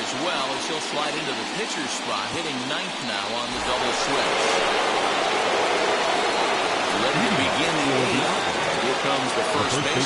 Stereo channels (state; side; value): identical; both; correlation 1.00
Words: well, as he'll slide into the pitcher's spot, hitting 9th now on the double switch. Ready to begin the 8th. Here comes the first